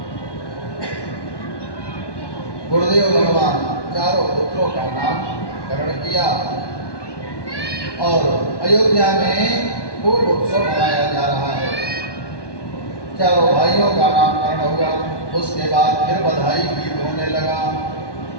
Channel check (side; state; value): right; late; 1.1 ms